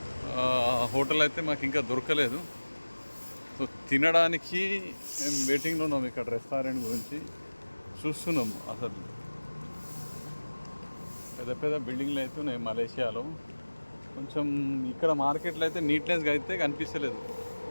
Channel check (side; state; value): both; inverted; correlation -1.00